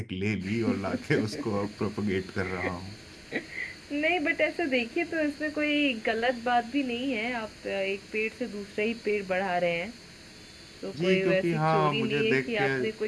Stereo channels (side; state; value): both; identical; correlation 1.00